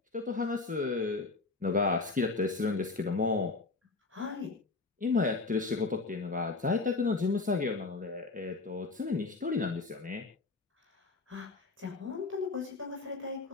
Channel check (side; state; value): right; quieter; 3.7 dB